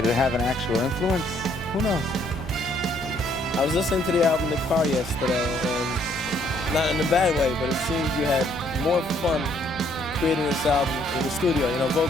it have an actual influence? Who knows? I was listening to the album in the car yesterday, and not in a bad way, but it seemed you had more fun creating this album in the studio,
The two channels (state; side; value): normal; both; correlation 0.66